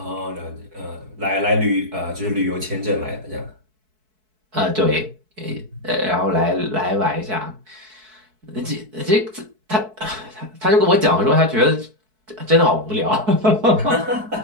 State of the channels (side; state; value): left; late; 4.6 ms